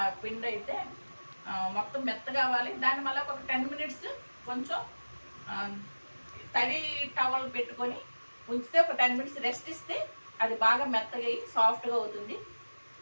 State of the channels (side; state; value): both; inverted; correlation -1.00